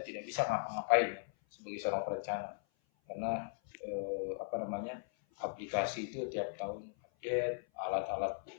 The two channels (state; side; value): silent; right; 52 dB below the other